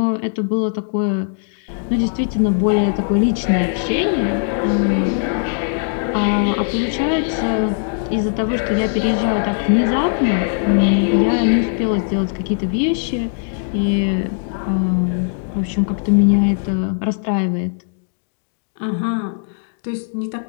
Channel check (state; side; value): silent; right; digital silence